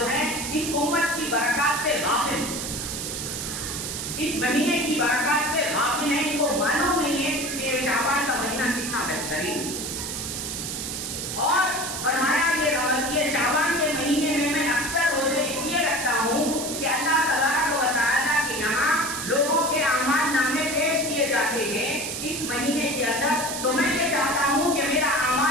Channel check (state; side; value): noise; right; hiss, 5 dB below the sound